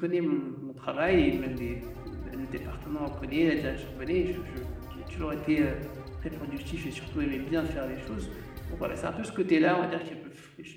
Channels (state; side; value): identical; both; correlation 1.00